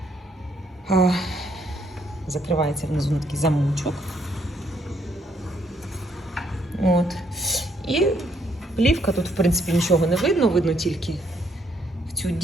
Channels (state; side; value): normal; both; correlation 0.71